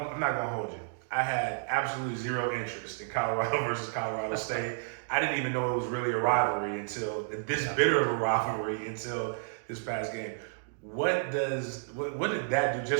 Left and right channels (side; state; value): left; silent; digital silence